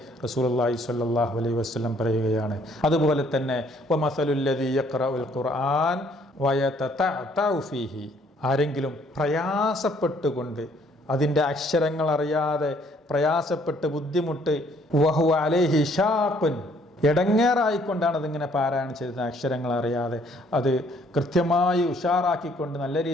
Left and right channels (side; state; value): both; normal; correlation 0.64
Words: റസൂലുള്ളാഹി സ്വല്ലല്ലാഹു അലൈഹി വസല്ലം പറയുകയാണ്. അതുപോലെ തന്നെ വമസലുല്ലദീ യഖ്റഉൽ ഖുർആൻ വയതതഅതഉ ഫീഹി, ആരെങ്കിലും പ്രയാസപ്പെട്ടുകൊണ്ട് അതിൻ്റെ അക്ഷരങ്ങൾ അറിയാതെ പ്രയാസപ്പെട്ട് ബുദ്ധിമുട്ട്, വഹുവ അലൈഹി ഷാഖുൻ, ഇടങ്ങേറായിക്കൊണ്ടാണ് അതിങ്ങനെ പാരായണം ചെയ്തത്, അക്ഷരങ്ങൾ അറിയാതെ അത് കൃത്യമായി ഉഷാറാക്കിക്കൊണ്ട് നല്ല